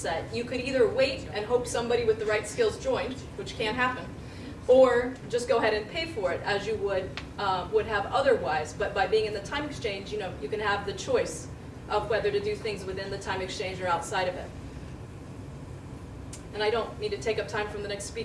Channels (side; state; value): both; identical; correlation 1.00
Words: you could either wait and hope somebody with the right skills joined, which can happen, or just go ahead and pay for it as you would have otherwise. But by being in the time exchange, you know, you can have the choice of whether to do things within the time exchange or outside of it. And I don't need to take up time from the next